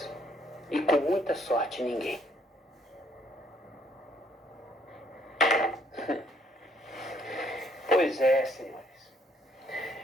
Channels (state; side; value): normal; both; correlation 0.67